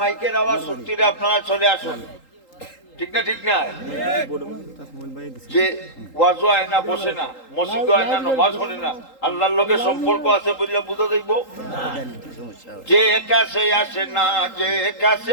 আওয়াজ সত্যি আপনারা চলে আসুন, ঠিক না? ঠিক না? যে ওয়াজও হয় না, বসে না, মসজিদও হয় না, নামাজ পড়ে না, আল্লাহর লোকের সম্পর্ক আছে বললে বুঝা যাইব। যে কাছে আসে না, যে কাছে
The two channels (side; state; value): right; late; 3.8 ms